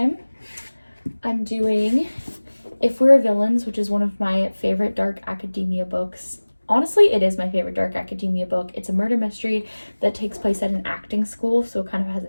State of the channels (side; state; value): both; inverted; correlation -1.00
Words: I'm doing If We're Villains, which is one of my favorite dark academia books. Honestly, it is my favorite dark academia book. It's a murder mystery that takes place at an acting school, so it kind of has